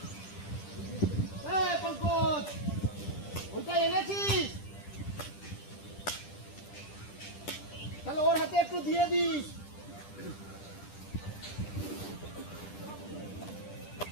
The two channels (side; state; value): right; late; 10 ms